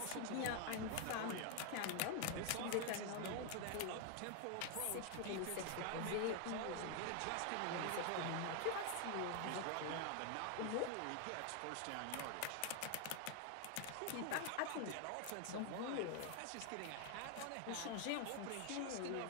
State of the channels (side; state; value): both; different; correlation 0.00